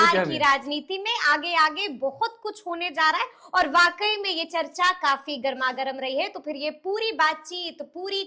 की राजनीति में आगे आगे बहुत कुछ होने जा रहा है। और वाकई में ये चर्चा काफी गर्मागर्म रही है। तो फिर ये पूरी बातचीत, पूरी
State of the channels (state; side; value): identical; both; correlation 1.00